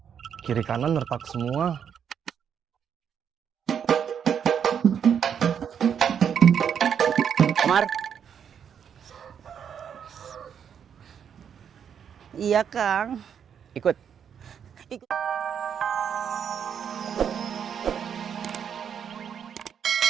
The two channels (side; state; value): left; quieter; 7.9 dB